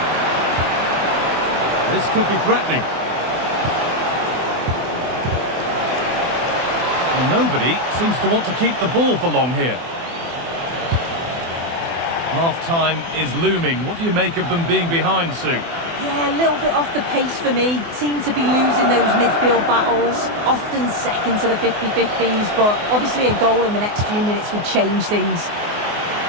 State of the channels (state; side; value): late; left; 24 ms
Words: This could be threatening. Well, nobody seems to want to keep the ball for long here. Half-time is looming. What do you make of them being behind, Sue? Yeah, a little bit off the pace for me. Seem to be losing those midfield battles. Often second to the 50-50s, but obviously a goal in the next few minutes would change things.